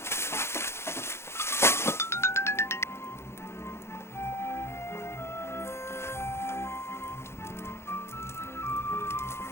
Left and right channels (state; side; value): late; right; 0.12 ms